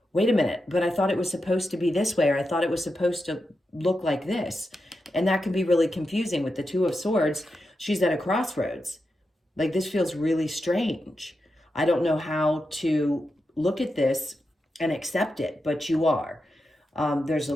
wait a minute, but I thought it was supposed to be this way, or I thought it was supposed to look like this. And that can be really confusing with the Two of Swords. She's at a crossroads. Like, this feels really strange. I don't know how to look at this and accept it, but you are. There's a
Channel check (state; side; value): normal; both; correlation 0.88